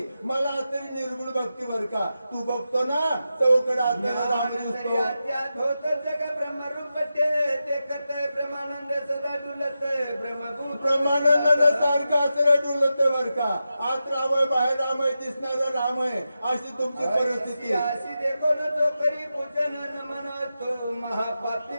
मला असणारी निर्गुण भक्ती बर का तू बघतो ना चौकड असणारा राम दिसतो जग ब्रह्मरूप देखत ब्रह्मानंद सदा डुलत ब्रह्मभूत ब्रह्मानंद सारखं असं डुलत बर का आत राम आहे बाहेर राम आहे दिसणारा राम आहे अशी तुमची परिस्थिती. अशी देखो न जो करी पूजन नमन तो महापापी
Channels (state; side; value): inverted; both; correlation -0.90